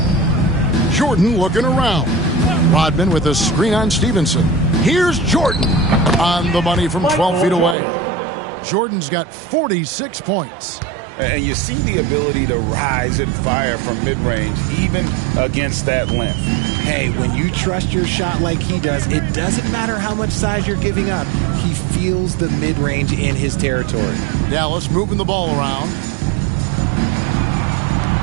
Jordan looking around. Rodman with a screen on Stevenson. Here's Jordan on the money from 12 feet away. Jordan's got 46 points. And you see the ability to rise and fire from mid-range, even against that length. Hey, when you trust your shot like he does, it doesn't matter how much size you're giving up. He feels the mid-range in his territory. Dallas moving the ball around.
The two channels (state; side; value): drops out; left; at 7.8 s